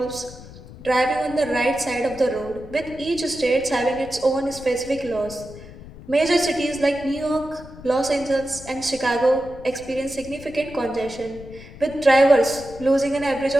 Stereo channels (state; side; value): noise; left; rumble, 17 dB below the sound